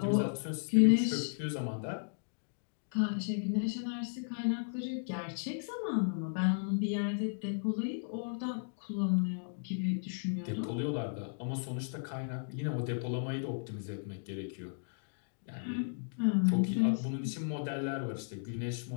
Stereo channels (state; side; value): silent; right; digital silence